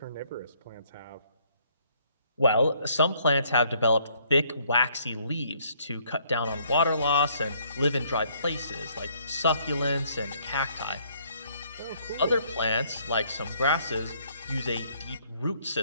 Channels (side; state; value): both; inverted; correlation -0.66